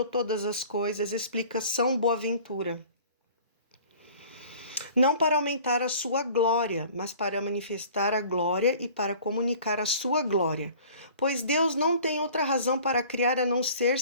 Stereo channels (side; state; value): both; inverted; correlation -0.47